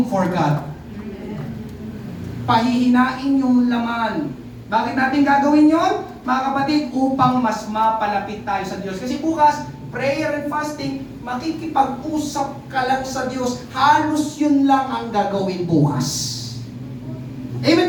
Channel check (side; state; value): both; identical; correlation 1.00